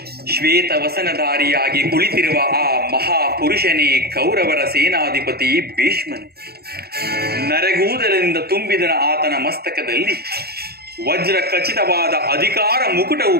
ಶ್ವೇತ ವಸನಧಾರಿಯಾಗಿ ಕುಳಿತಿರುವ ಆ ಮಹಾಪುರುಷನೇ ಕೌರವರ ಸೇನಾಧಿಪತಿ ಭೀಷ್ಮನು. ನರೆಗೂದಲಿನಿಂದ ತುಂಬಿದ ಆತನ ಮಸ್ತಕದಲ್ಲಿ ವಜ್ರ ಖಚಿತವಾದ ಅಧಿಕಾರ ಮುಕುಟವು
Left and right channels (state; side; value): late; left; 0.46 ms